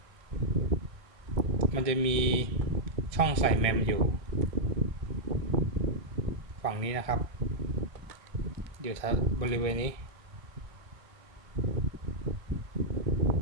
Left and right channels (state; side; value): late; left; 1.6 ms